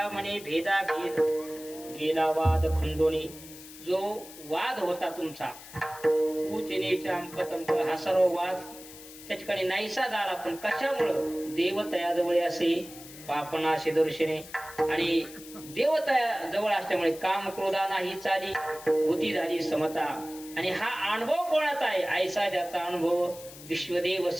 म्हणे भेदा भेद गेला वाद खंडोनी. जो वाद होता तुमचा कुचिनेचा अंकतंक हा सर्व वाद त्या ठिकाणी नाहीसा झाला. पण कशामुळं देवतया जवळ असे पापनाशी दर्शने आणि देवतया जवळ असल्यामुळे काम क्रोधा नाही चाली बुद्धी झाली समता. आणि हा अनुभव कोणाचा आहे ऐसा ज्याचा अनुभव विश्वदेव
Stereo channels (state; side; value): noise; left; hiss, 16 dB below the sound